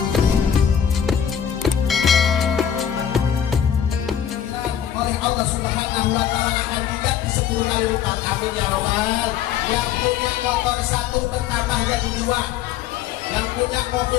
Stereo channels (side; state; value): right; quieter; 9.1 dB